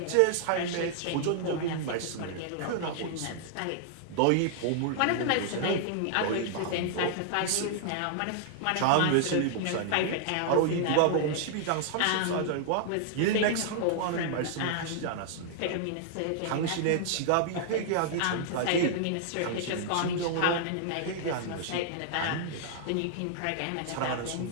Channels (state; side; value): different; both; correlation -0.01